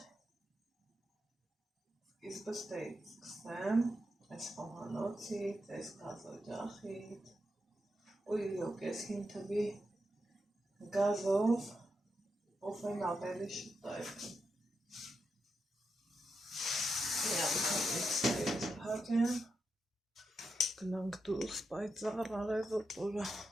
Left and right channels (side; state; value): both; normal; correlation 0.86